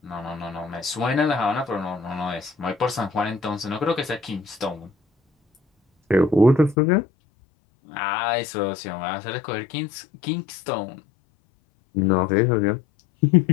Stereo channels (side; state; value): right; drops out; at 6.8 s